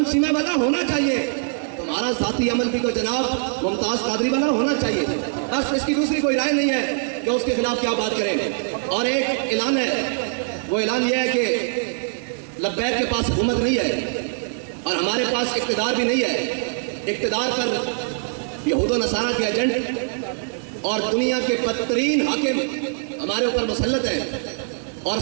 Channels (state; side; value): silent; left; digital silence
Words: شیمہ والا ہونا چاہیے. تمہارا ذاتی عمل بھی تو جناب ممتاز قادری والا ہونا چاہیے. بس اس کی دوسری کوئی رائے نہیں ہے کہ اس کے خلاف کیا بات کریں. اور ایک اعلان ہے، وہ اعلان یہ ہے کہ لبیک کے پاس حکومت نہیں ہے اور ہمارے پاس اقتدار بھی نہیں ہے. اقتدار پر یہود و نصارہ کے ایجنٹ اور دنیا کے بدترین حاکم ہمارے اوپر مسلط ہیں اور